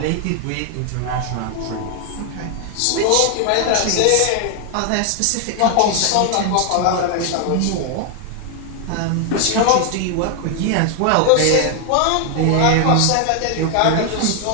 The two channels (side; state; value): both; different; correlation 0.00